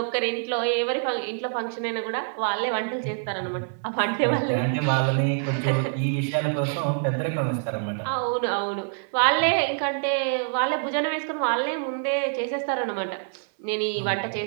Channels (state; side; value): silent; left; 60 dB below the other